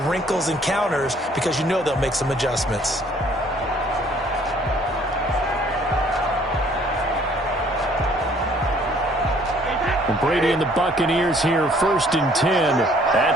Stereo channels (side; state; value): both; normal; correlation 0.59